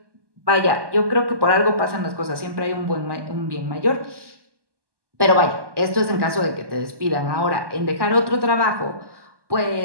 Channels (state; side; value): late; left; 1.1 ms